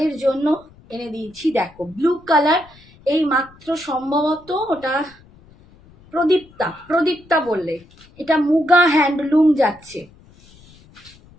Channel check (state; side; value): noise; left; rumble, 26 dB below the sound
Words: জন্য এনে দিয়েছি, দেখো ব্লু কালার, এই মাত্র সম্ভবত ওটা প্রদীপ্তা, প্রদীপ্তা বললে, এটা মুগা হ্যান্ডলুম যাচ্ছে,